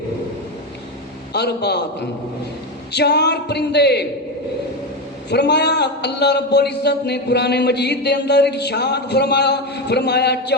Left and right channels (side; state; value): both; normal; correlation 0.14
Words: 4 پرندے. فرمایا اللہ رب العزت نے قرآن مجید دے اندر ارشاد فرمایا